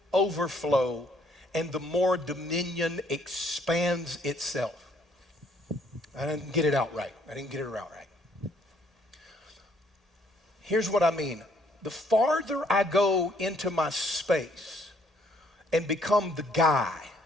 overflow and the more dominion expands itself. I didn't get it out right. Here's what I mean. The farther I go into my space and become the guy,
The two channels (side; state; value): both; normal; correlation 0.65